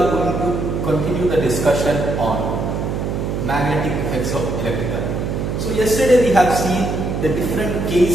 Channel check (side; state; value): right; noise; hum, 2 dB below the sound